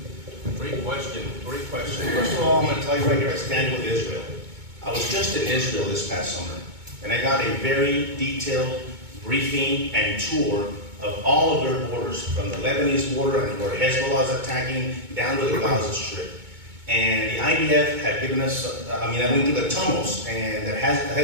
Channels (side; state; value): left; late; 2.2 ms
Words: Great question, great question. First of all, I'm going to tell you right here, I stand with Israel. I was just in Israel this past summer, and I got a very detailed briefing and tour of all of their borders, from the Lebanese border and where Hezbollah is attacking down to the Gaza Strip. And the IDF had given us, I went through the tunnels and that